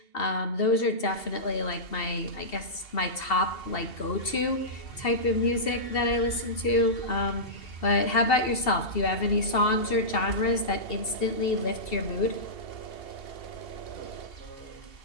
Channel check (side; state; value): right; late; 2.7 ms